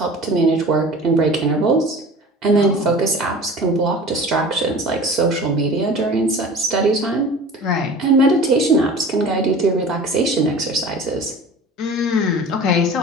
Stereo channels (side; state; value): both; normal; correlation 0.39